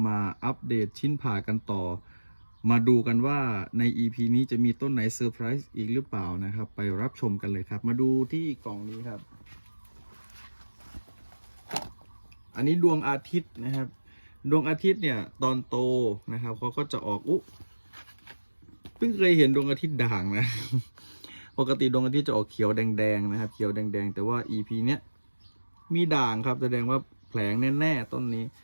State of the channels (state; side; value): inverted; both; correlation -1.00